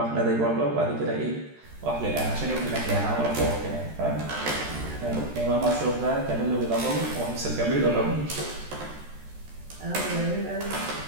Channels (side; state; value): left; late; 13 ms